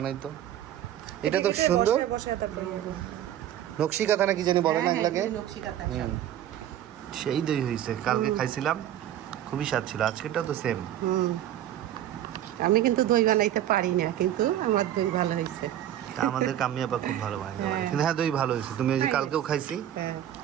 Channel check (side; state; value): left; quieter; 11.6 dB